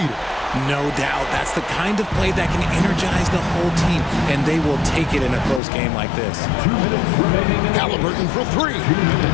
No doubt. That's the kind of play that can energize the whole team, and they will take it in a close game like this. Haliburton for 3.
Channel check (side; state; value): right; drops out; at 5.6 s